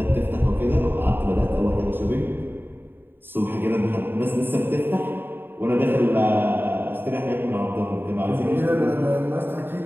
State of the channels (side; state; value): left; late; 0.099 ms